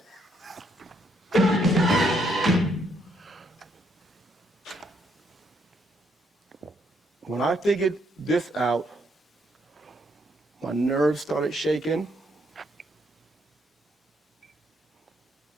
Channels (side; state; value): both; normal; correlation 0.73